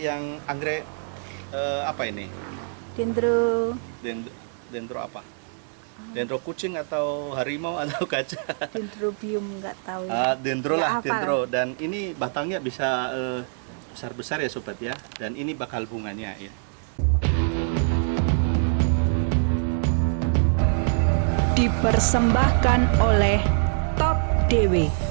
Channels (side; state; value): left; silent; 62 dB below the other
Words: yang apa ini? Dendro. Dendro apa? Dendro kucing atau harimau atau gajah? Dendrobium nggak tahu. Dendro Nggak lah, hafal. dendro. Dan ini batangnya bisa besar-besar ya sobat ya. Dan ini bakal bunganya ya. Dipersembahkan oleh Top DW,